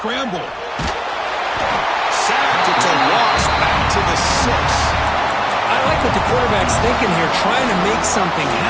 Sacked. It's a loss. Back to the 6. I like what the quarterback's thinking here, trying to make something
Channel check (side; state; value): both; identical; correlation 1.00